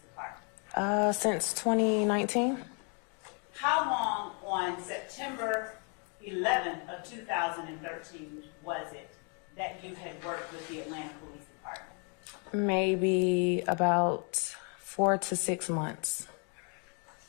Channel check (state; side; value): quieter; right; 36.9 dB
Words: Department? Since 2019. How long on September 11th of 2013 was it that you had worked with the Atlanta Police Department? Maybe about 4 to 6 months.